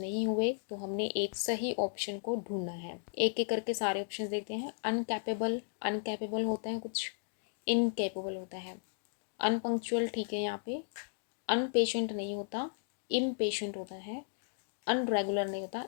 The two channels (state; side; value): silent; right; digital silence